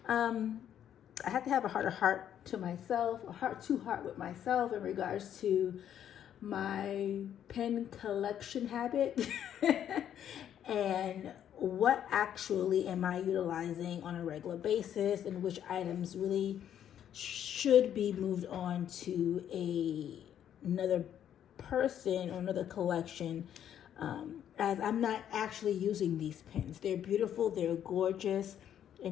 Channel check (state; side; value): quieter; right; 10.0 dB